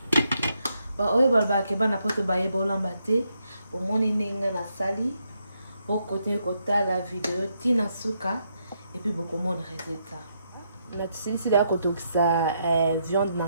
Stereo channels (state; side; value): inverted; both; correlation -0.78